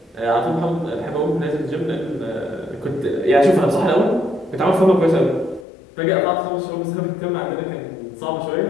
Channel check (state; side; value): drops out; right; at 5.7 s